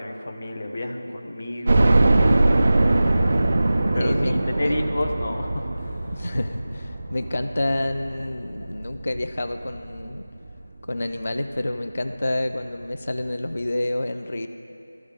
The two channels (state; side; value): inverted; both; correlation -0.97